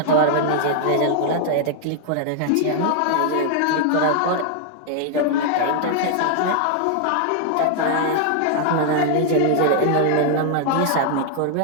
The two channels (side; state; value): both; different; correlation 0.00